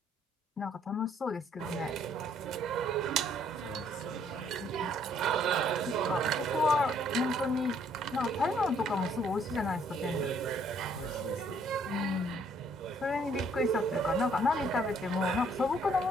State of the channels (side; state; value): both; normal; correlation 0.65